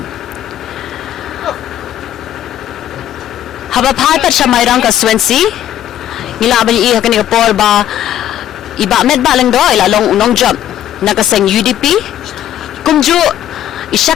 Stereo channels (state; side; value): quieter; right; 11.5 dB